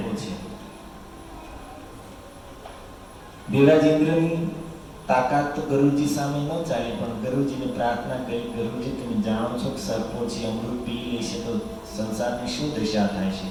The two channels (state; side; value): identical; both; correlation 1.00